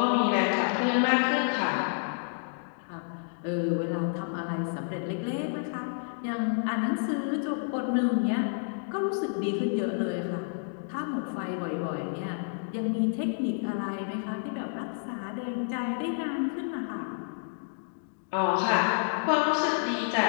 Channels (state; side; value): silent; right; digital silence